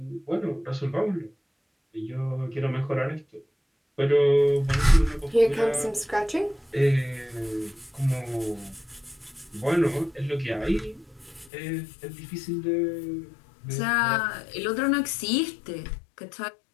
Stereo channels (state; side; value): drops out; right; at 11.5 s